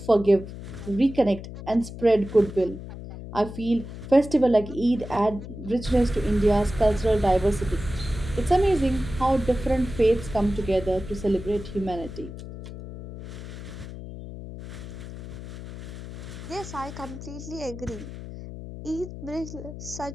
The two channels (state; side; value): noise; left; hum, 11 dB below the sound